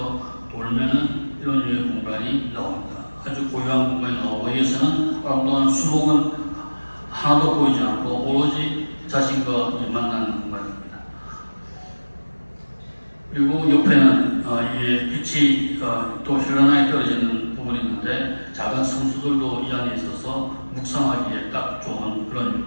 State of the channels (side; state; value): both; inverted; correlation -1.00